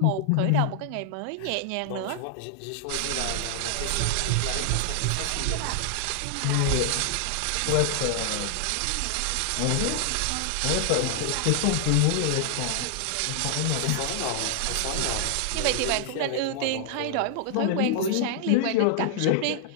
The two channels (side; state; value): both; different; correlation 0.00